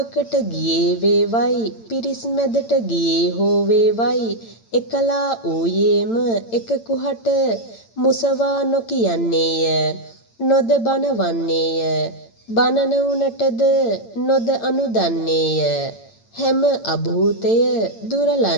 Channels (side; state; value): right; late; 8.9 ms